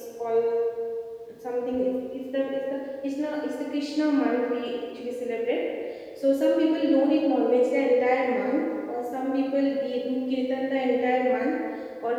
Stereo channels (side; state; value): both; identical; correlation 1.00